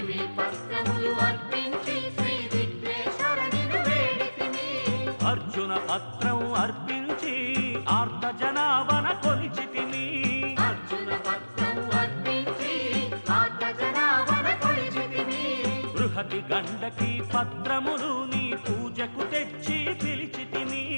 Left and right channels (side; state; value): both; inverted; correlation -1.00